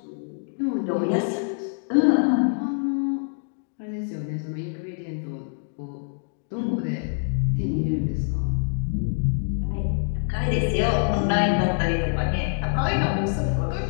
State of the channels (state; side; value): silent; right; digital silence